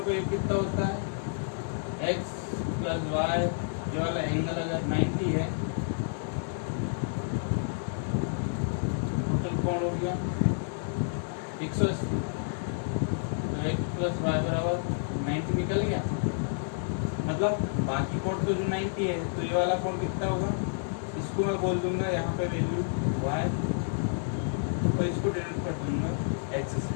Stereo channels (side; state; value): right; silent; digital silence